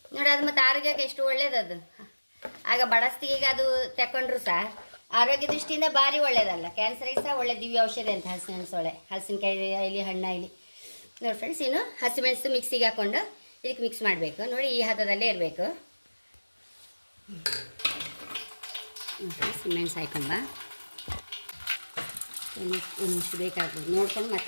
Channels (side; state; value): both; inverted; correlation -1.00